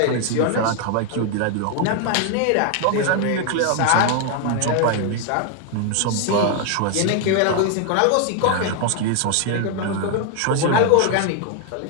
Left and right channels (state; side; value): different; both; correlation 0.01